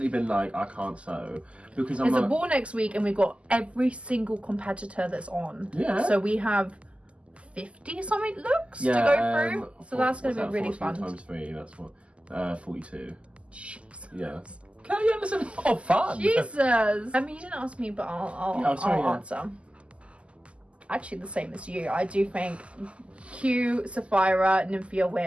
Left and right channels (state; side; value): late; left; 0.057 ms